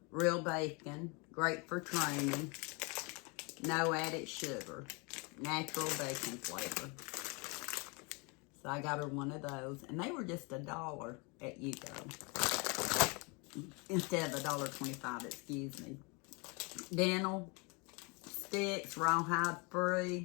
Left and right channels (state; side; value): quieter; right; 30.3 dB